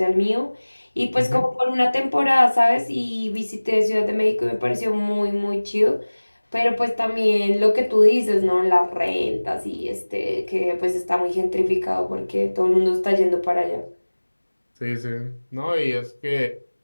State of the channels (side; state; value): both; inverted; correlation -1.00